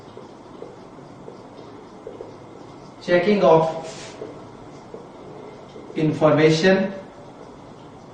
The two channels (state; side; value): identical; both; correlation 1.00